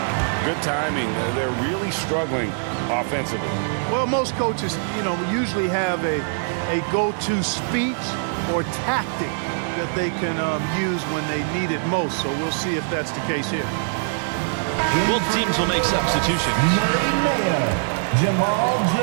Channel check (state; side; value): silent; left; digital silence